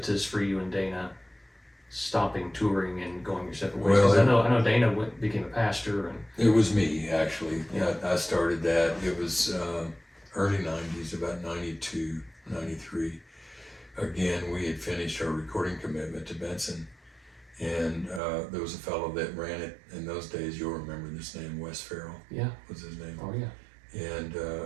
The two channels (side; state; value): left; drops out; at 18.2 s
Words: for you and Dana stopping touring and going your separate ways? Because I know Dana became a pastor, and it was me actually. Yeah. I started that. It was early 90s, about 92, 93. Again, we had finished our recording commitment to Benson, and there was a fellow that ran it in those days. You'll remember this name, Wes Farrell. Yeah, was his name. Oh yeah. And